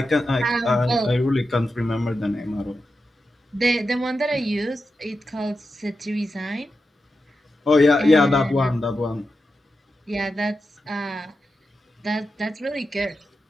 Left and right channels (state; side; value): normal; both; correlation 0.89